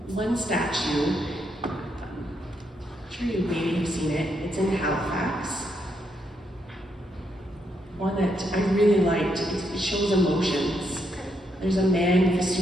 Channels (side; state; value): both; normal; correlation 0.78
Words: One statue, I'm sure you maybe have seen it, it's in Halifax. One that I really liked, it shows emotions. There's a man with a